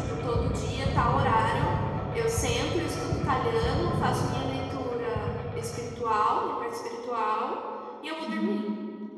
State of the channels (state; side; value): identical; both; correlation 1.00